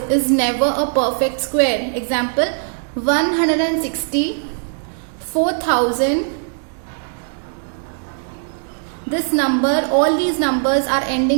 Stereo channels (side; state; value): left; silent; digital silence